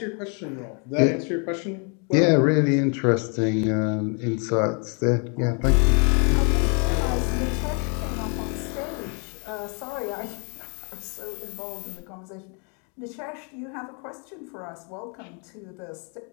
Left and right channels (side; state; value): right; quieter; 37.7 dB